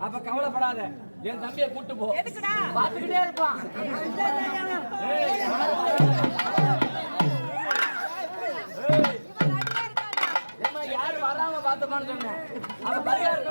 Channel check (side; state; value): both; inverted; correlation -1.00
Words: அப்ப கவலைப்படாத, என் தம்பியை கூட்டு போ, பாத்துக்கிட்டே இருப்பான். யாரு வராம பார்த்தப்பான்னு சொன்னேன். அப்ப பரிகார